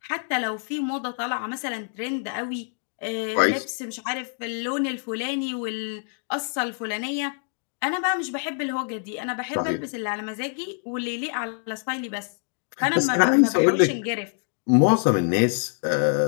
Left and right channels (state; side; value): silent; right; digital silence